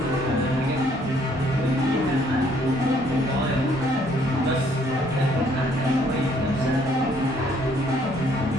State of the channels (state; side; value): normal; both; correlation 0.64